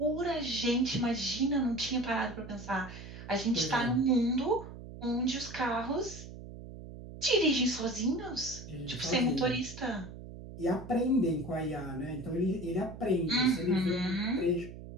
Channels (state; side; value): noise; right; hum, 13 dB below the sound